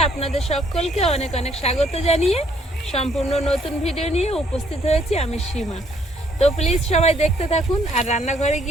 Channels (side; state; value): both; normal; correlation 0.66